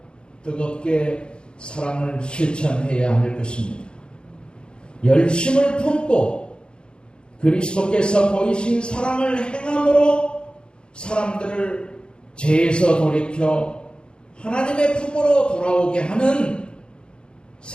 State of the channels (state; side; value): late; right; 0.052 ms